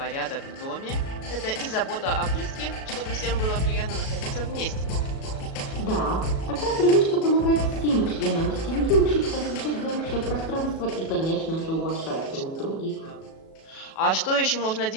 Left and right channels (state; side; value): late; right; 37 ms